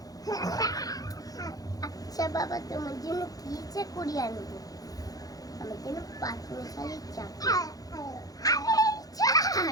আচ্ছা বাবা তোমার জন্য কি চা করি আনবো আমার জন্য পাঁচমিশালি চা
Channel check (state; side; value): late; right; 0.18 ms